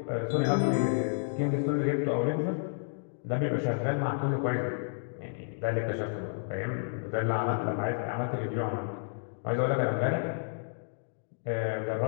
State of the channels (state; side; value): silent; right; digital silence